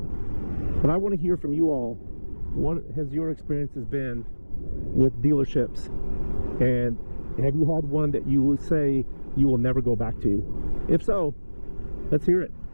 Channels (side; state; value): both; inverted; correlation -1.00